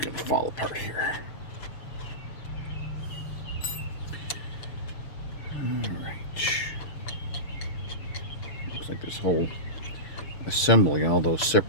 to fall apart here. Alright. Looks like this whole assembly, all those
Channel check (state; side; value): late; right; 7.0 ms